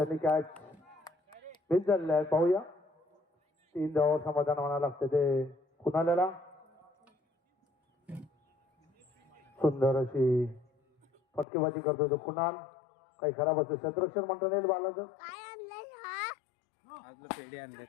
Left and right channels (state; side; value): drops out; right; at 11.5 s